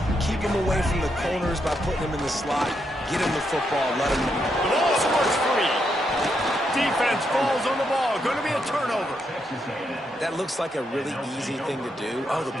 Keep him away from the corners by putting him in the slot. Get him the football, let him know. The ball squirts free. Defense falls on the ball. Going to be a turnover. That looks like a really easy thing to do. Oh, the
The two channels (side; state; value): both; normal; correlation 0.80